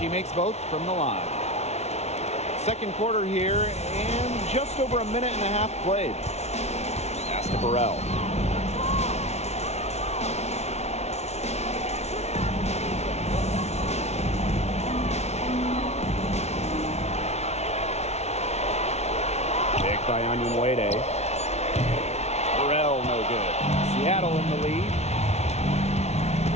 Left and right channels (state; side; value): late; right; 0.31 ms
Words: makes both from the line. Second quarter here, and just over a minute and a half played. Pass to Burrell. Picked by Anyunwede. Burrell no good. Seattle in the lead.